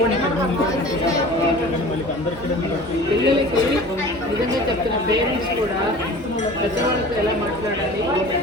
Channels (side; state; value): both; normal; correlation 0.41